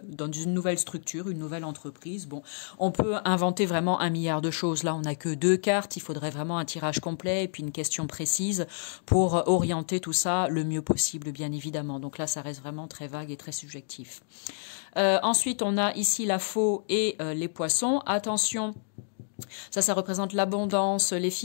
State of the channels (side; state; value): right; silent; digital silence